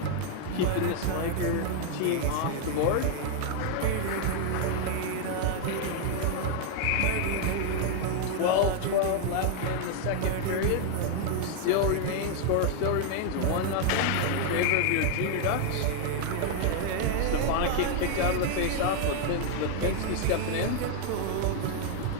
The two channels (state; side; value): different; both; correlation 0.00